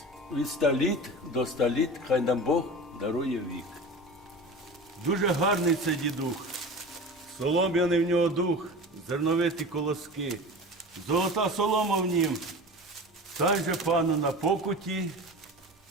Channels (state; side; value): normal; both; correlation 0.33